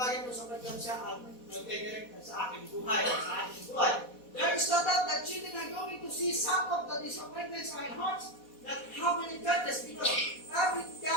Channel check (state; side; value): late; right; 4.1 ms